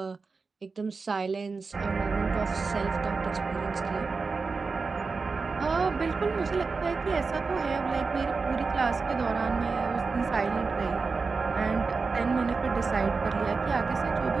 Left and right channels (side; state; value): left; quieter; 4.4 dB